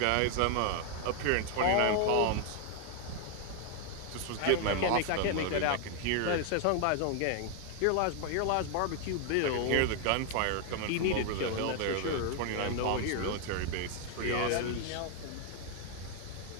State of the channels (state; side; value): different; both; correlation 0.00